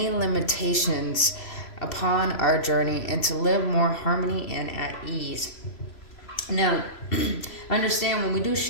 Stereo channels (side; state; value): right; late; 3.0 ms